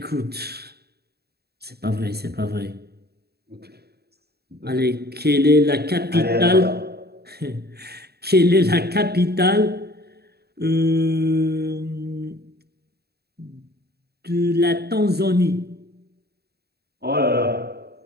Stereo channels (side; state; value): left; late; 0.47 ms